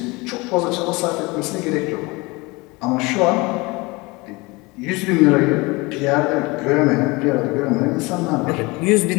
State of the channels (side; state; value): right; quieter; 24.6 dB